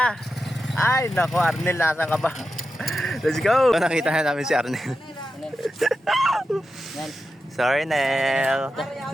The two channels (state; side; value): normal; both; correlation 0.90